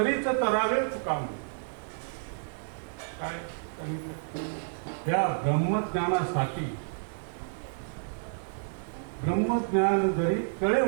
तरावेच काम. काय त्या ब्रह्मज्ञानासाठी, ब्रह्मज्ञान जरी कळे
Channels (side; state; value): left; silent; digital silence